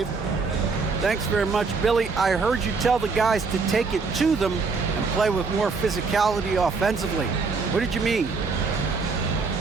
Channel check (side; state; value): left; quieter; 4.5 dB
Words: Thanks very much, Billy. I heard you tell the guys to take it to them and play with more physicality offensively. What did you mean?